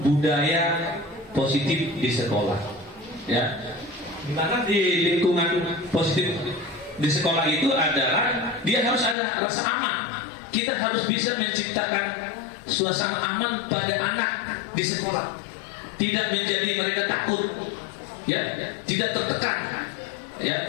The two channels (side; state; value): right; drops out; at 9.2 s